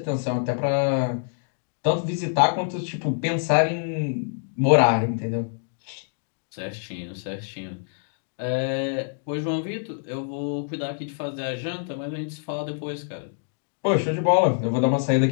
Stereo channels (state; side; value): silent; right; digital silence